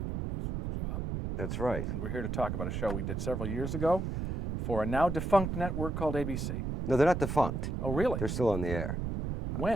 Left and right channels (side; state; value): right; noise; rumble, 3 dB below the sound